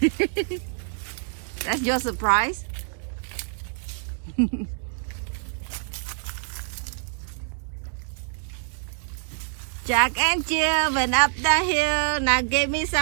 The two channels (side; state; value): left; silent; 61 dB below the other